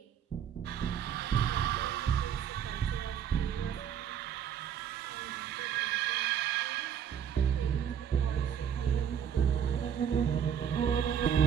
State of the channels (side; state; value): left; quieter; 8.7 dB